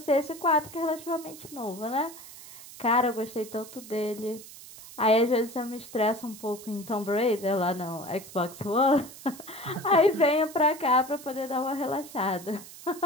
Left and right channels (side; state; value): right; noise; hiss, 16 dB below the sound